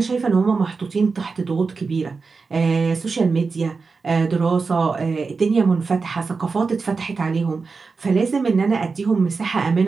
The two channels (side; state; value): left; quieter; 4.6 dB